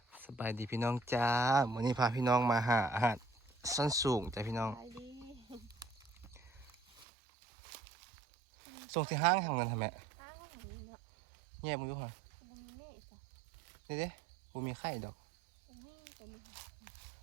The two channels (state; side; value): drops out; left; at 7.1 s